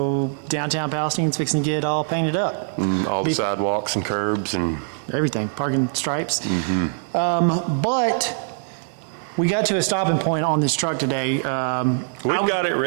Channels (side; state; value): left; silent; digital silence